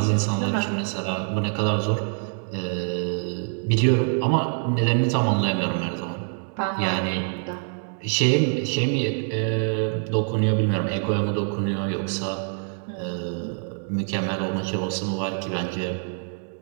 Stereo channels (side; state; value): left; silent; 62 dB below the other